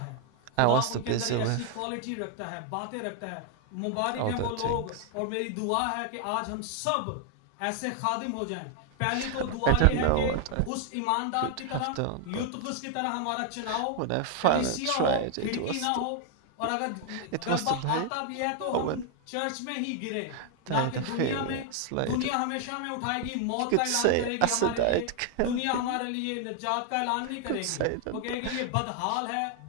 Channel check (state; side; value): different; both; correlation 0.00